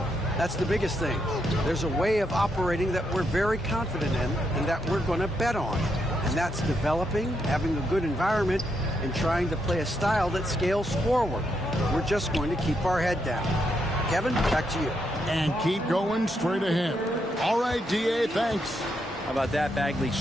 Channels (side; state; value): both; normal; correlation 0.80